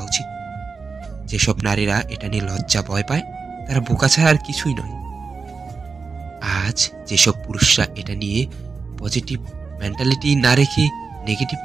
উচিত। যেসব নারীরা এটা নিয়ে লজ্জা ভয় পায়, তারা বোকা ছাড়া আর কিছুই নয়। আজ যেসব পুরুষরা এটা নিয়ে পজিটিভ মেন্টালিটি না রেখে নেগেটিভ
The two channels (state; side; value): quieter; left; 4.8 dB